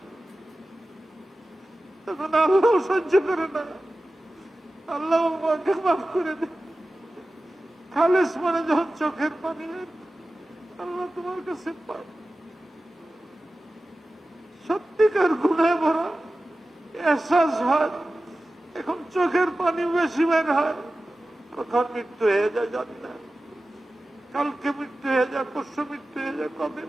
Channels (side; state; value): both; normal; correlation 0.95